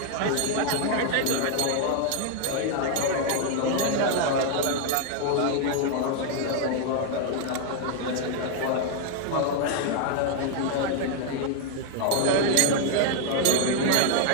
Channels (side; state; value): both; different; correlation 0.00